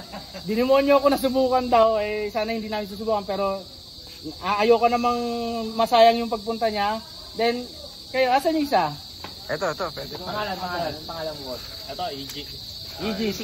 Dinimonyo ko na subukan daw. Eh, sana hindi namin susubukan. Pero, ayoko namang masayang yung pagpunta niya. Then, kayo, asan yung isa? Ito, pwede. Pangalan mo. Ito, EG. EG, si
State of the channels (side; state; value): both; identical; correlation 1.00